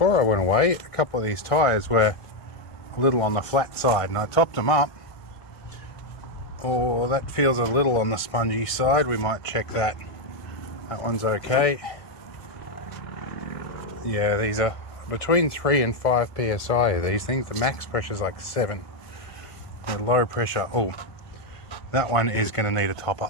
I went away, a couple of these tyres were a little on the flat side, and I topped them up. Oh, that feels a little on the spongy side. We might check that. That one's okay. Yeah, these are between 3 and 5 psi. These things, the max pressure is like 7. The low pressure, oh, that one is going to need a top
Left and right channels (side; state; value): right; late; 1.5 ms